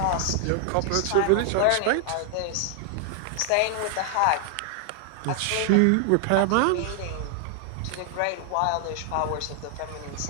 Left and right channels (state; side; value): different; both; correlation 0.00